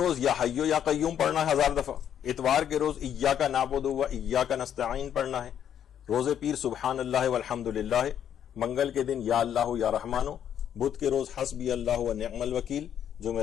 یا حیو یا قیوم پڑھنا ہے 1000 دفعہ. اتوار کے روز ایاک نعبد و ایاک نستعین پڑھنا ہے. روز پیر سبحان اللہ والحمد للہ. منگل کے دن یا اللہ یا رحمانو. بدھ کے روز حسبی اللہ و نعم الوکیل.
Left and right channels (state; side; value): quieter; right; 9.5 dB